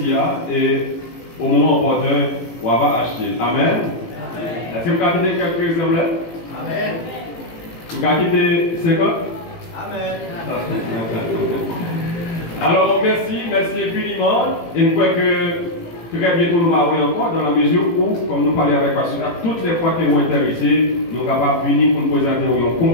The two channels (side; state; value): right; late; 18 ms